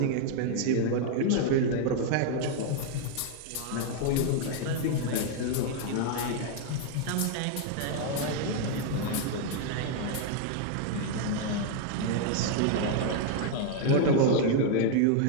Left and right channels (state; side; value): different; both; correlation 0.00